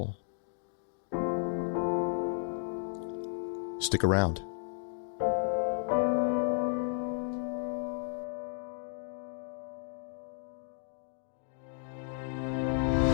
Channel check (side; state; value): right; silent; digital silence